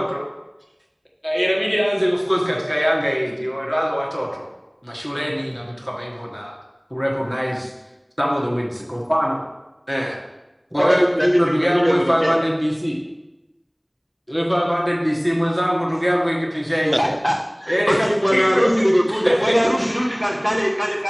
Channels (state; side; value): identical; both; correlation 1.00